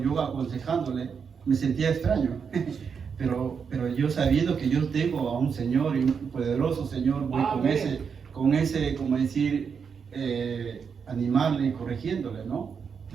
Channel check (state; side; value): quieter; left; 6.3 dB